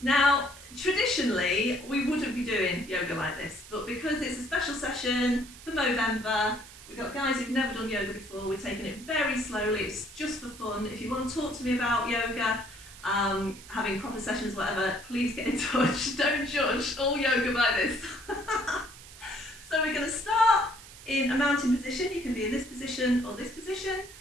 Now, traditionally, we wouldn't be doing yoga like this, but because it's a special session for Movember, we've got guys who've never done yoga before, we're taking it very slowly, it's just for fun. If you want to talk to me about yoga, having proper sessions, whatever, please get in touch. Don't judge all yoga by this. So we're going to start in a mountain position. You can be in this position or this position.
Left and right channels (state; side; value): noise; right; hiss, 18 dB below the sound